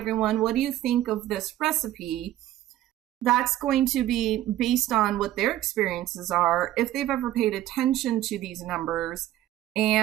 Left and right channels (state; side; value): quieter; left; 13.8 dB